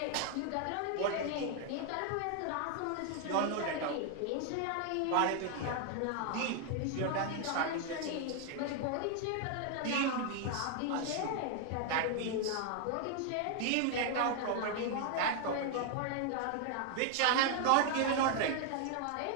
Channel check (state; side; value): different; both; correlation 0.00